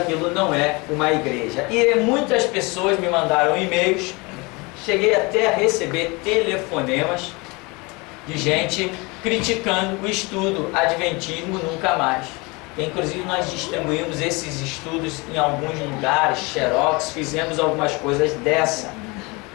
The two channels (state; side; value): quieter; right; 26.5 dB